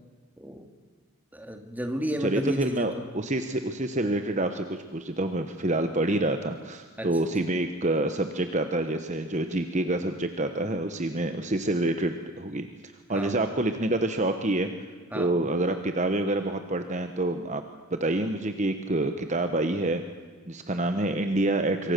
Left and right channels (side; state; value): both; normal; correlation 0.43